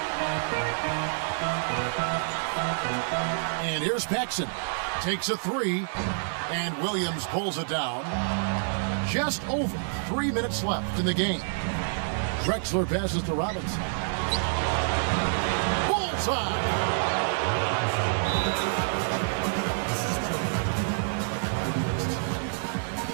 And here's Paxson. Takes a 3, and Williams pulls it down. Just over 3 minutes left in the game. Drexler passes to Robinson. Bullseye!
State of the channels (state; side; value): silent; left; digital silence